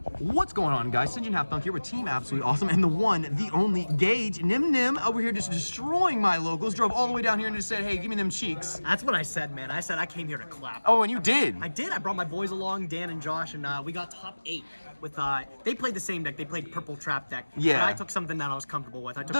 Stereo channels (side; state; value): both; inverted; correlation -1.00